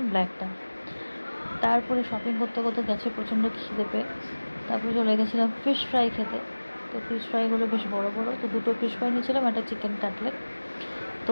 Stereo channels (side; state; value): both; inverted; correlation -1.00